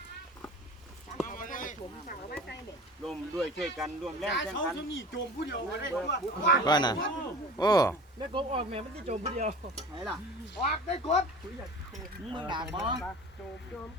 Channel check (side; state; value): both; normal; correlation 0.38